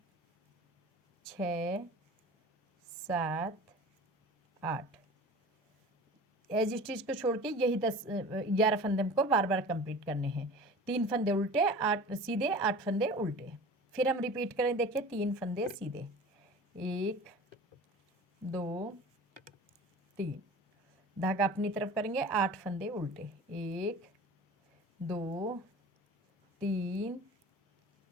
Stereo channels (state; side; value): normal; both; correlation 0.39